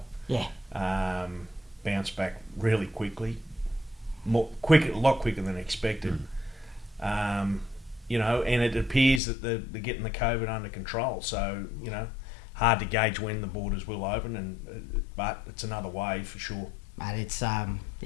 Yeah. Bounced back really quickly, a lot quicker than expected. And it appears that they're getting the COVID under control. So, hard to gauge when the borders will open, but it's another wave for sure. But it's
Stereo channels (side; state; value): right; drops out; at 9.2 s